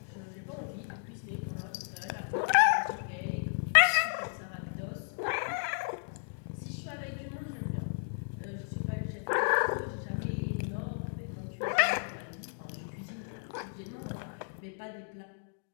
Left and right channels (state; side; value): silent; right; digital silence